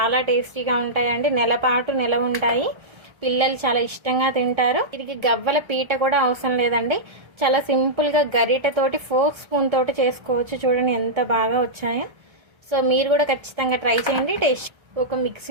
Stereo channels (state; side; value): late; left; 1.3 ms